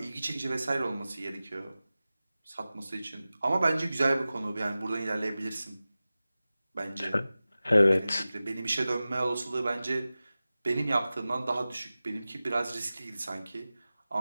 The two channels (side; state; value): both; inverted; correlation -0.96